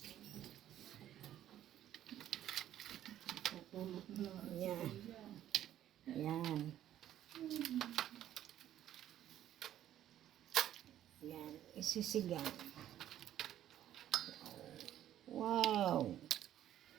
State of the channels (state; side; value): quieter; left; 11.8 dB